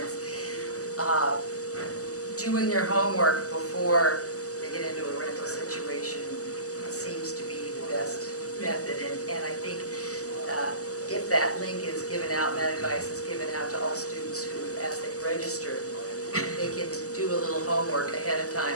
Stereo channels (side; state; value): right; late; 0.66 ms